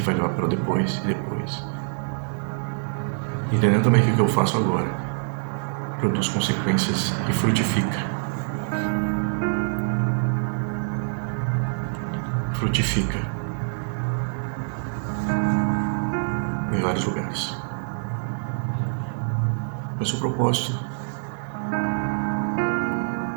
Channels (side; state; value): left; silent; digital silence